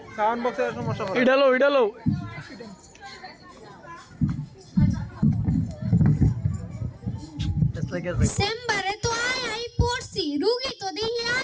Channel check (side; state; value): both; identical; correlation 1.00